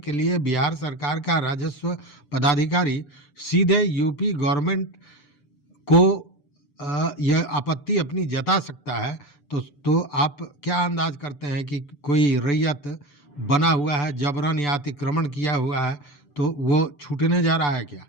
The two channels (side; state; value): right; late; 6.9 ms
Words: लिए बिहार सरकार का राजस्व पदाधिकारी सीधे यूपी गवर्नमेंट को यह आपत्ति अपनी जता सकता है, तो आप क्या अंदाज करते हैं कि कोई रैयत बना हुआ है, जबरन या अतिक्रमण किया हुआ है, तो वो छूटने जा रहा है क्या?